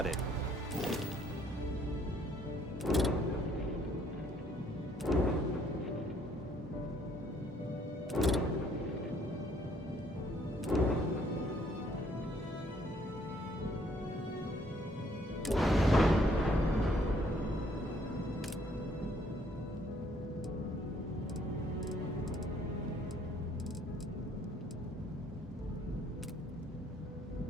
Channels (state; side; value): normal; both; correlation 0.65